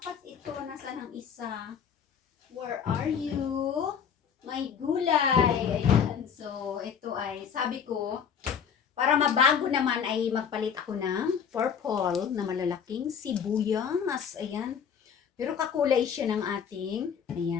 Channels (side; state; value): right; quieter; 7.4 dB